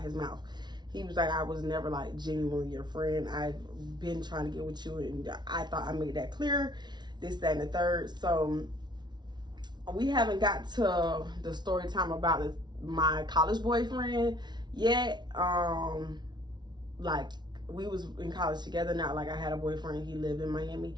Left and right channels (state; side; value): late; left; 0.20 ms